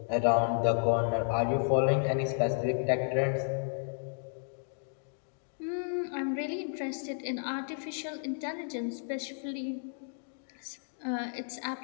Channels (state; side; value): silent; right; digital silence